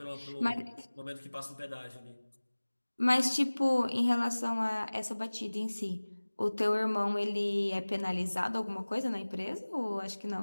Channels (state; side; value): inverted; both; correlation -1.00